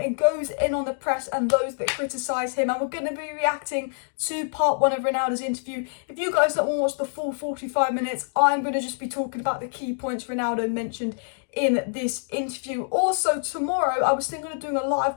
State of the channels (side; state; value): right; silent; digital silence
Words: goes in on the press and those that criticise him. And we're going to be reacting to part one of Ronaldo's interview. If you guys don't want to watch the full 45 minutes, I'm going to just be talking about the key points Ronaldo mentioned in this interview. Also, tomorrow I was thinking of doing a live